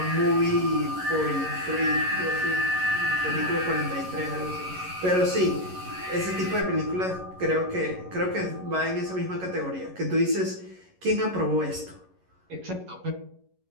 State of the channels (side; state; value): left; late; 11 ms